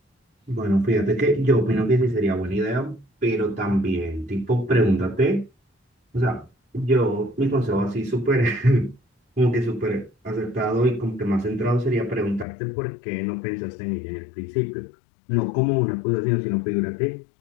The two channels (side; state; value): right; drops out; at 12.5 s